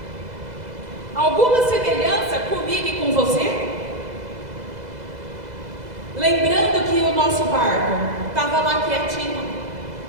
Alguma semelhança comigo e com você? Lembrando que o nosso barco estava lá quietinho,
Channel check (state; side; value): late; left; 2.0 ms